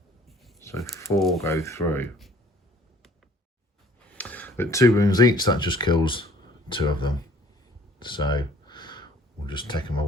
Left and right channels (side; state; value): both; normal; correlation 0.55